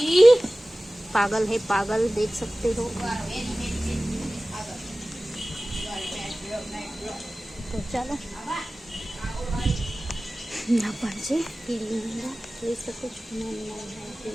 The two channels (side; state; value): both; normal; correlation 0.97